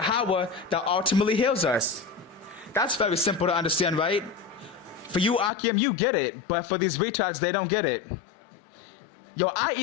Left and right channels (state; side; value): drops out; right; at 5.5 s